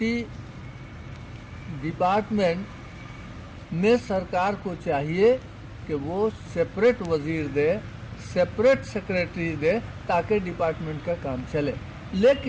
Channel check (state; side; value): identical; both; correlation 1.00